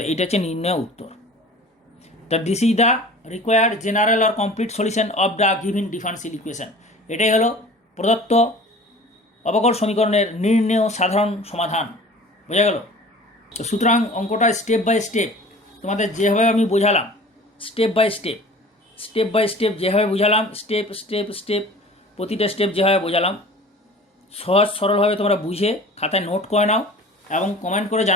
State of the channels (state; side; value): normal; both; correlation 0.44